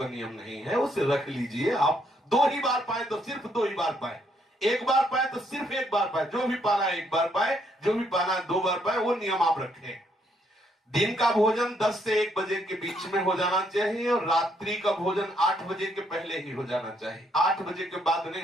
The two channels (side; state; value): both; normal; correlation 0.72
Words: नियम नहीं है, उसे रख लीजिए। आप 2 ही बार पाए तो सिर्फ 2 ही बार पाए, 1 बार पाए तो सिर्फ 1 बार पाए, जो भी पाना है 1 बार पाए, जो भी पाना है 2 बार पाए, वो नियम आप रखें। दिन का भोजन 10 से 1 बजे के बीच में हो जाना चाहिए और रात्रि का भोजन 8 बजे के पहले ही हो जाना चाहिए, 8 बजे के बाद नहीं